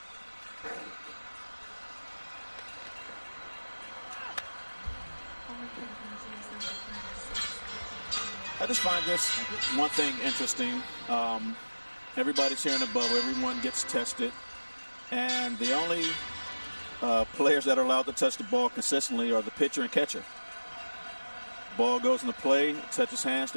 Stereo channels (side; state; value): both; inverted; correlation -1.00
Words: I just find this one thing interesting. Everybody's here in the bubble. Everyone gets tested. And the only players that are allowed to touch the ball consistently are the pitcher and catcher. Ball goes into play, touches hands,